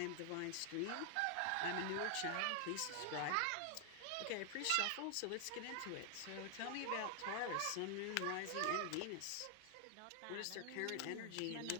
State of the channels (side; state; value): both; different; correlation 0.00